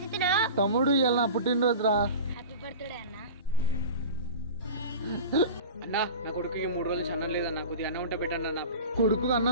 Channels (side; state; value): both; inverted; correlation -0.34